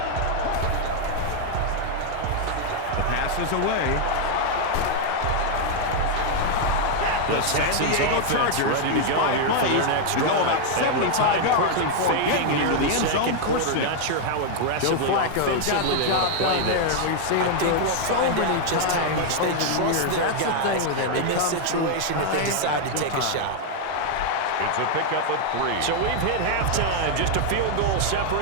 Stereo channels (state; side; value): different; both; correlation 0.00